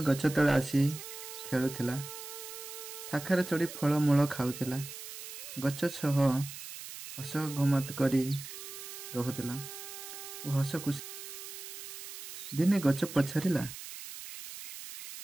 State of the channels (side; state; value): right; noise; hiss, 11 dB below the sound